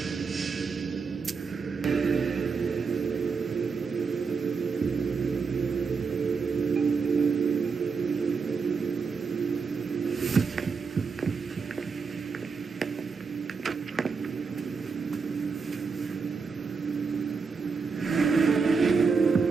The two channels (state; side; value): quieter; left; 5.1 dB